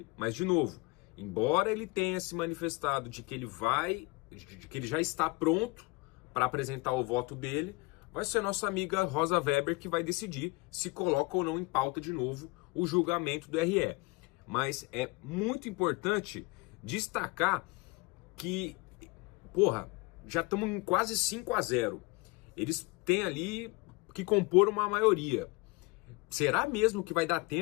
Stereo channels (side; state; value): right; quieter; 25.8 dB